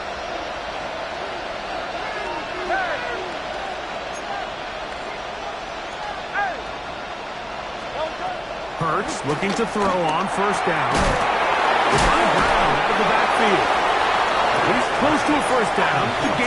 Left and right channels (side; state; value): both; identical; correlation 1.00